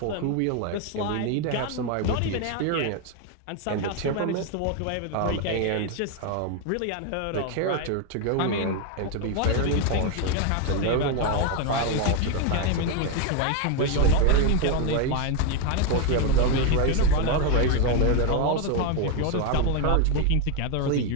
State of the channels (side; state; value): both; different; correlation 0.01